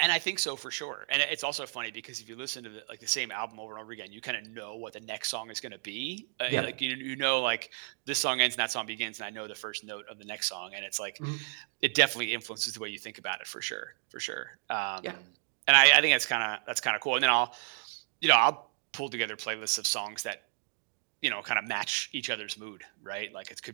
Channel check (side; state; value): left; silent; digital silence